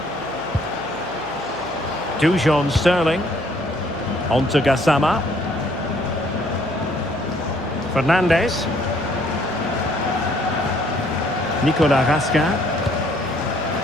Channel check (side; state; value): right; noise; hum, 21 dB below the sound